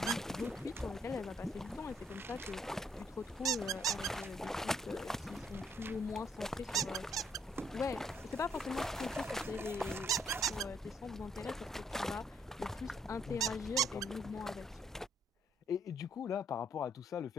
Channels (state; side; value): normal; both; correlation 0.71